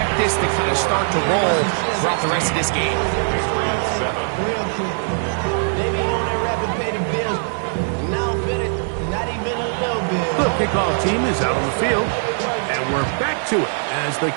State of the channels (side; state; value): left; silent; 65 dB below the other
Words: this to kind of start to roll throughout the rest of this game. The kickoff team is out on the field, and we're back to it as the